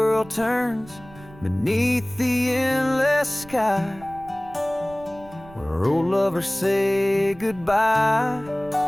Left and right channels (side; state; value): right; noise; rumble, 20 dB below the sound